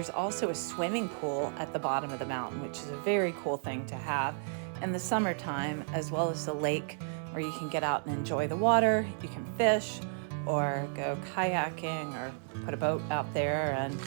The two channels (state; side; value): silent; left; 56 dB below the other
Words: also a swimming pool at the bottom of the mountain, which is a very cool thing to have in the summertime, as well as the lake where you can get out and enjoy the water. You can fish or go kayaking or put a boat out there, and